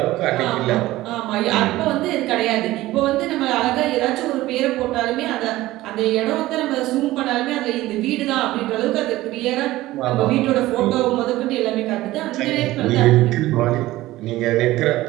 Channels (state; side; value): quieter; left; 16.9 dB